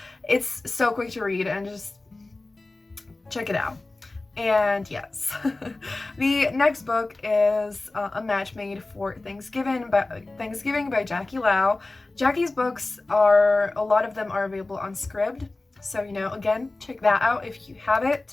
it's so quick to read, and just check it out. And yes, the next book is A Match Made for Thanksgiving by Jackie Lau. Jackie's books are, a lot of them are available on Scribd. So, you know, again, check that out if you have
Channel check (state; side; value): quieter; right; 3.1 dB